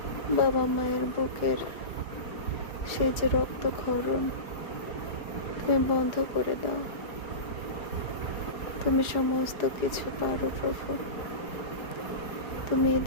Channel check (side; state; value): right; late; 4.8 ms